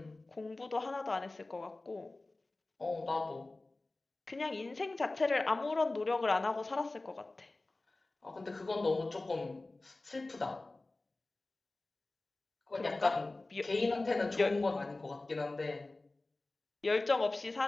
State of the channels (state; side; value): quieter; right; 3.1 dB